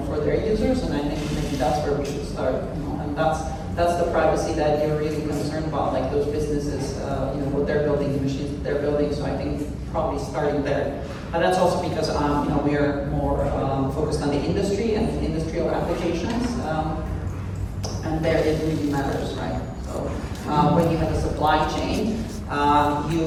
for their users, and I think maybe that's where we should start. And that's the privacy that you're really concerned about, like those businesses, what they're building, the machines that they're building. So I think probably starting there. And that's also because we are more focused on the industry and industrial applications, and there it really matters, right? So when you have a supply chain,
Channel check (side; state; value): both; identical; correlation 1.00